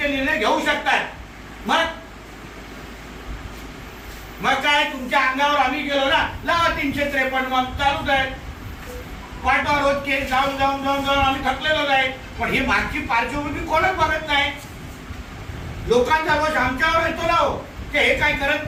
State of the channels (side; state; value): both; identical; correlation 1.00